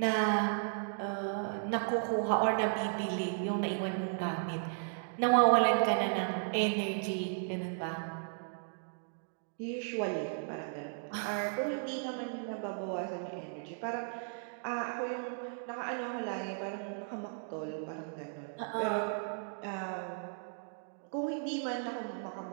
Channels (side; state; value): left; silent; digital silence